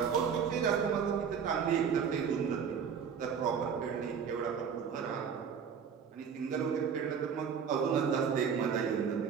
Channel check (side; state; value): left; quieter; 7.0 dB